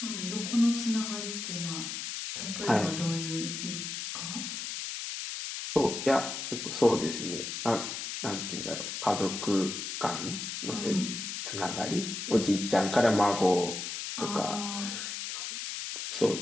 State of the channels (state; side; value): noise; left; hiss, 5 dB below the sound